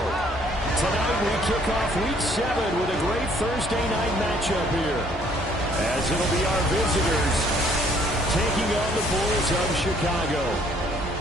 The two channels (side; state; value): both; normal; correlation 0.62